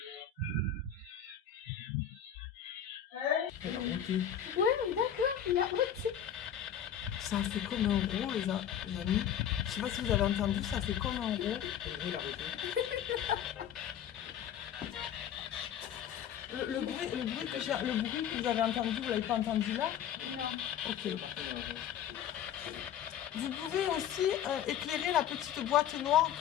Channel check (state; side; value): quieter; right; 9.3 dB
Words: Elle a monté. Ouais, d'accord, il a ôté. Ça a fait comme un rond, les amis. Je sais pas si vous avez entendu, ça fait comme un rond. Il a arrêté. Le bruit que vous avez entendu, vous l'avez pas entendu là? Non. Ok. Vous pouvez aussi éclairer la petite boîte noire